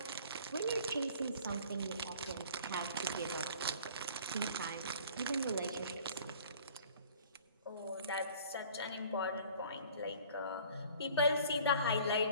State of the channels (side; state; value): both; inverted; correlation -0.49